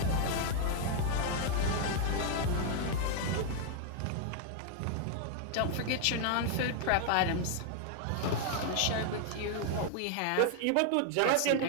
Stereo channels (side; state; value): both; different; correlation 0.00